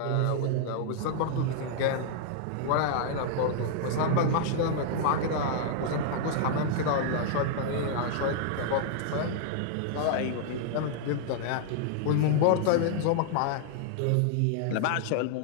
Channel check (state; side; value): different; both; correlation -0.01